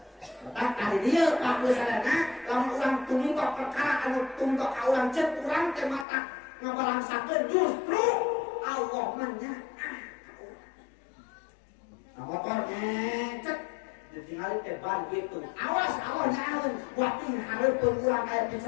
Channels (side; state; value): right; drops out; at 6.1 s